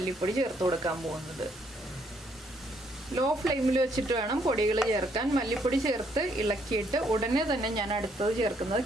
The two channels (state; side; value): normal; both; correlation 0.70